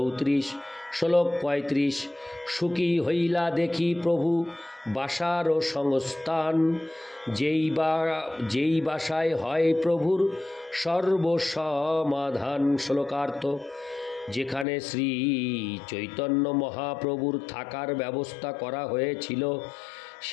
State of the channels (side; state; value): right; drops out; at 14.7 s